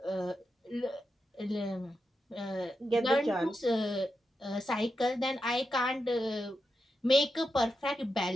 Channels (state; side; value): normal; both; correlation 0.87